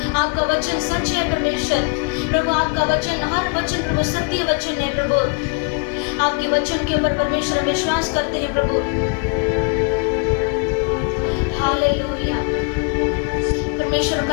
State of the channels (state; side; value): quieter; right; 33.7 dB